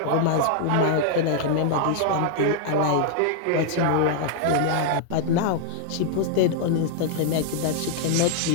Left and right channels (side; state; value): both; different; correlation 0.00